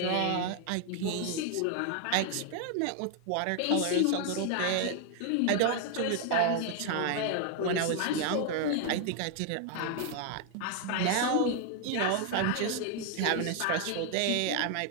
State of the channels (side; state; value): both; different; correlation 0.00